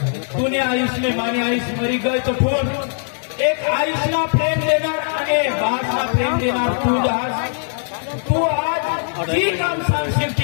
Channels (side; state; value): right; silent; 58 dB below the other